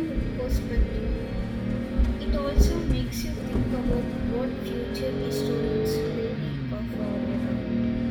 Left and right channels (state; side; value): identical; both; correlation 1.00